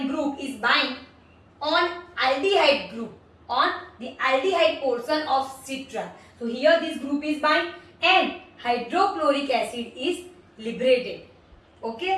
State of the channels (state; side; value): identical; both; correlation 1.00